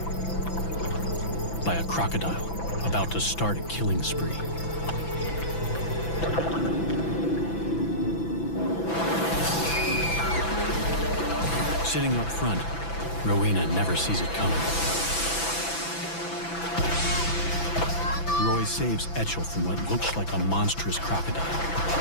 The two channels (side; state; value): right; late; 6.0 ms